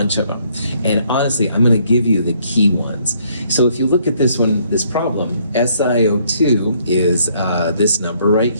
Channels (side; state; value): both; inverted; correlation -0.67